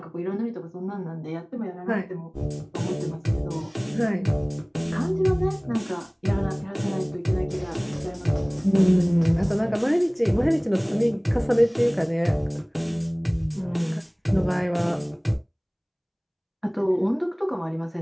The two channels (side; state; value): both; identical; correlation 1.00